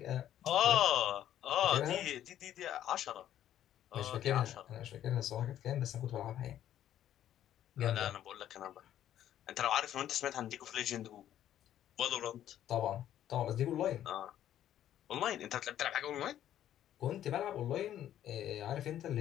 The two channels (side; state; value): right; quieter; 11.5 dB